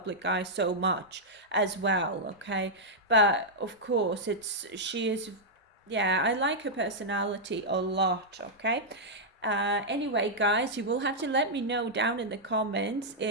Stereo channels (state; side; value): normal; both; correlation -0.07